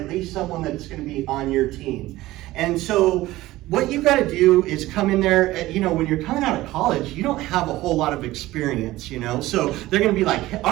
least someone that's going to be on your team. And so what you've got to do is come in there, when you're coming out of college, you don't have a whole lot of experience, so they're going to be like,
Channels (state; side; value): quieter; left; 17.1 dB